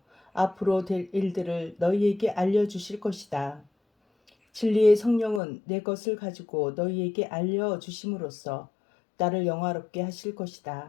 앞으로 될 일들을 너희에게 알려주실 것이다. 진리의 성령은 내 것을 가지고 너희에게 알려주심으로써 나를 영화롭게 하실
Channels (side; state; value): right; drops out; at 5.4 s